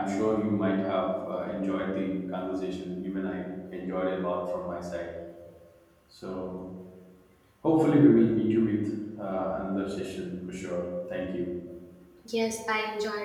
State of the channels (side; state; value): both; identical; correlation 1.00